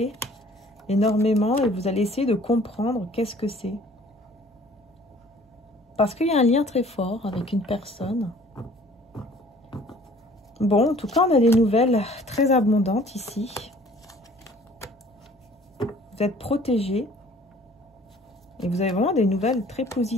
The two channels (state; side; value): normal; both; correlation 0.53